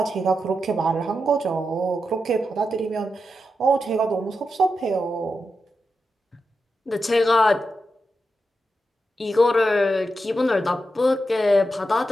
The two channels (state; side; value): normal; both; correlation 0.88